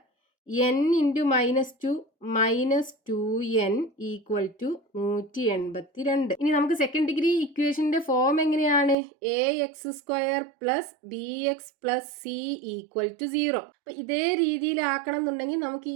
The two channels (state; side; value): drops out; left; at 9.0 s